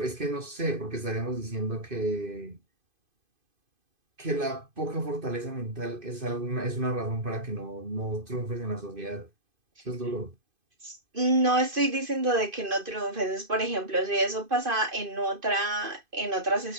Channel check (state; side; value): late; left; 2.5 ms